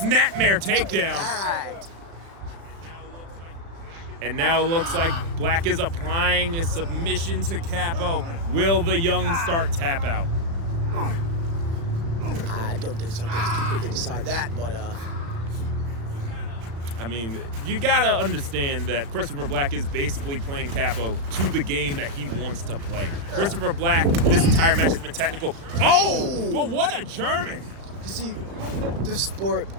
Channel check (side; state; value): left; late; 36 ms